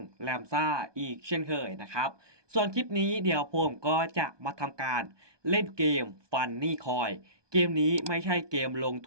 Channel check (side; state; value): left; late; 1.2 ms